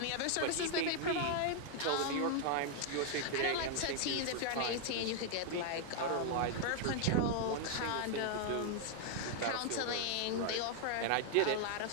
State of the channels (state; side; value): different; both; correlation 0.00